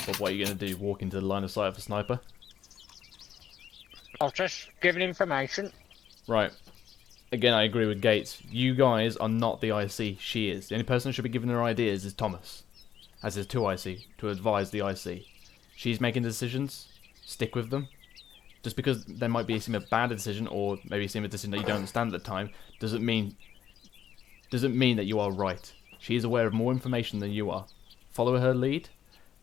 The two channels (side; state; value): right; quieter; 9.6 dB